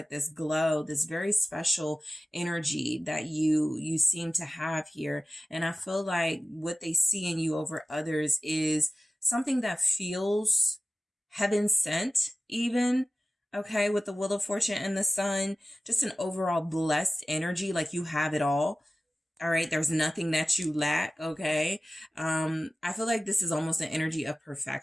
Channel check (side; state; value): both; normal; correlation 0.96